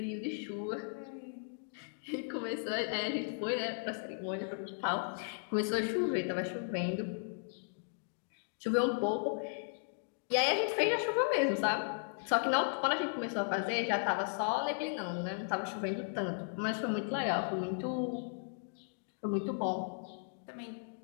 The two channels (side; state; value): right; silent; digital silence